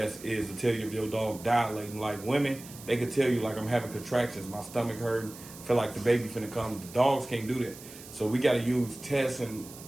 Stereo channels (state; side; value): noise; right; hiss, 16 dB below the sound